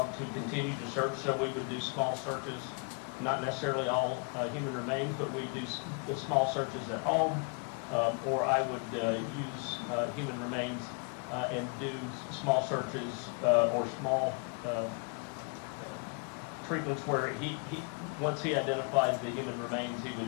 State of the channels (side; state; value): right; quieter; 37.8 dB